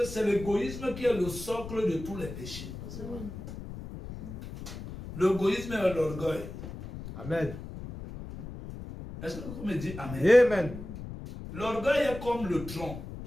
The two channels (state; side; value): noise; left; rumble, 10 dB below the sound